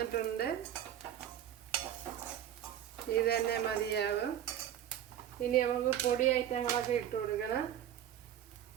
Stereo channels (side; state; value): left; quieter; 10.7 dB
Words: ഇത് തന്നെ മതിയാവും. ഇനി നമുക്ക് പൊടി ഐറ്റങ്ങളൊക്കെ ഇട്ട് കൊടുക്കണം.